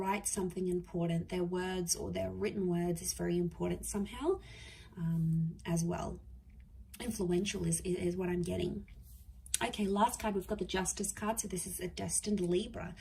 something important. Their words or their written words is very important somehow, as well. Influential is what I'm getting. Okay, last card, we've got the Justice card. So this is a destined Libra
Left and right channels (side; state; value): both; identical; correlation 1.00